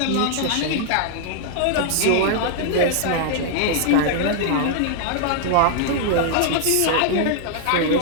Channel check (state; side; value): different; both; correlation -0.01